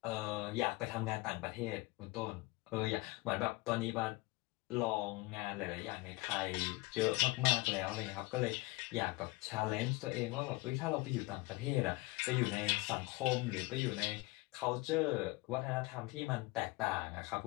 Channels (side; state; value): right; quieter; 23.3 dB